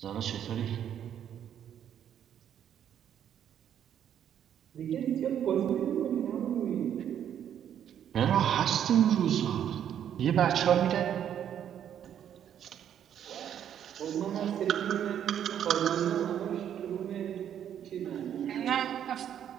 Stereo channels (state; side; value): quieter; left; 9.6 dB